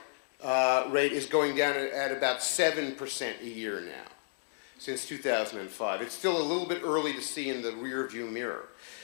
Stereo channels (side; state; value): right; silent; digital silence